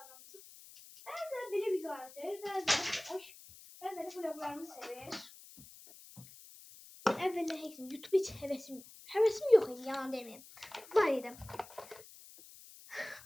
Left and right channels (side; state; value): left; noise; hiss, 19 dB below the sound